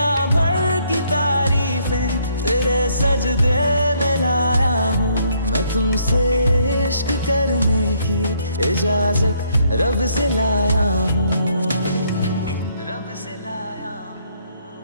भर की तारीफें तेरे सजदे में लाया हूँ। मैं तुमसे इश्क करने की इजाजत रब से लाया हूँ। रब से लाया हूँ,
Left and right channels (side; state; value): both; inverted; correlation -0.68